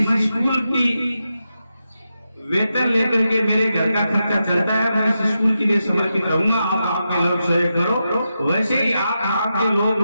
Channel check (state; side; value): inverted; both; correlation -0.88